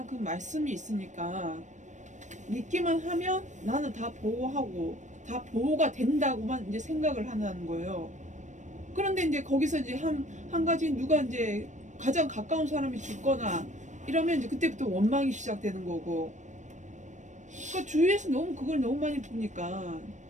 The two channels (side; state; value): left; late; 0.35 ms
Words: 그 말씀이 있으니까 믿기만 하면 나는 다 보호하고 다 보호가 된다고만 이제 생각을 하는 거예요. 그런데 이제 거기서 이제 한 가지 누가 이제 가장 가까운 사람이 죽거나 이러면 이제 그때부터 원망이 시작되는 거고. 그러니까 주위에서 너무 그걸 너무 많이 보니까.